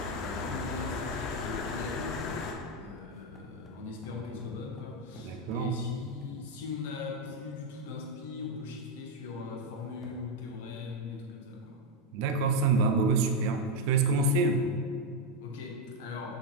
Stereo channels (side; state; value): both; normal; correlation 0.04